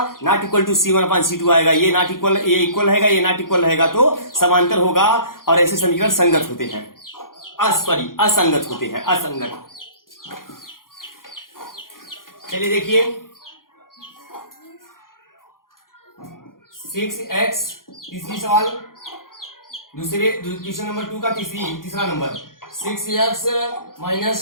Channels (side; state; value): right; late; 0.91 ms